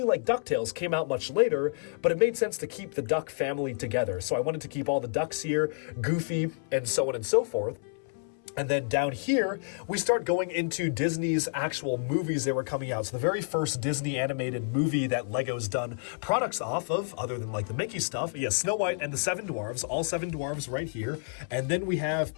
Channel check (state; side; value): silent; right; 58 dB below the other